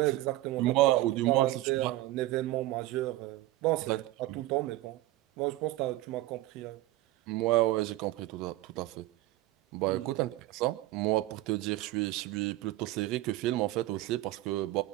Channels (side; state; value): left; quieter; 17.0 dB